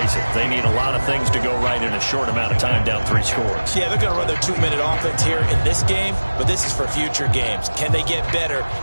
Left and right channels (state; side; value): inverted; both; correlation -1.00